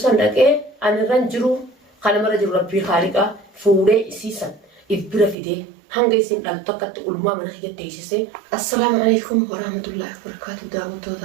san dhaqee anirran jiru kana mara jiru rabbii haaliqa fuudhee isiisan ibira fidee hanga isin dhaltu akkatti ulmaa mana kiyyatti teessisee assalaamu alaykum warahmatullahi wabarakatuh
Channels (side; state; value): left; drops out; at 5.4 s